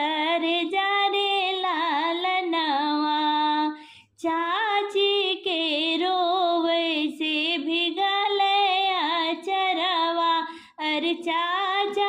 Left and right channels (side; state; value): both; identical; correlation 1.00